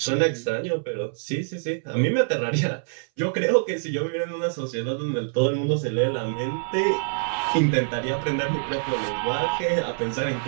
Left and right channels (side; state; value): left; silent; 62 dB below the other